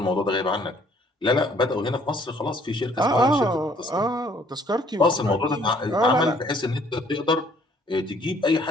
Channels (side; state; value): both; normal; correlation 0.61